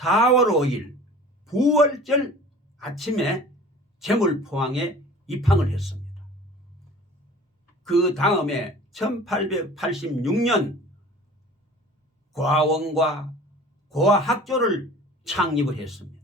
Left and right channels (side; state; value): both; normal; correlation 0.44